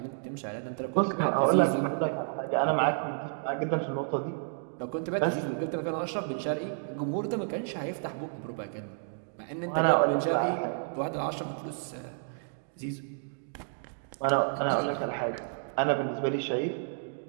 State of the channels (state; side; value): silent; left; digital silence